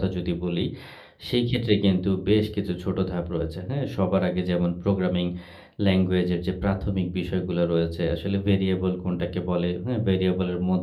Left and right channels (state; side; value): identical; both; correlation 1.00